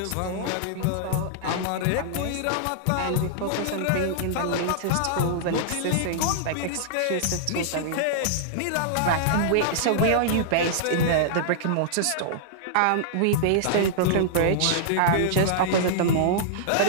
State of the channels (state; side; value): different; both; correlation -0.02